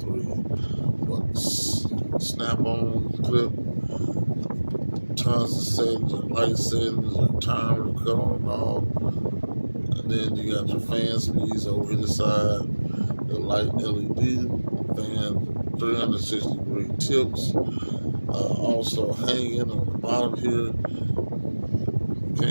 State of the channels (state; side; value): inverted; both; correlation -1.00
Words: Snap-on clip, tons of settings, and light settings, and timer, cut on and off. And then you got your fan speeds over the side, the light LED, fan 360-degree tips, also hanging on the bottom here.